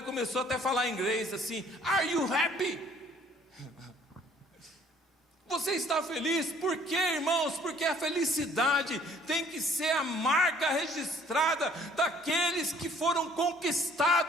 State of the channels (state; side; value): normal; both; correlation 0.58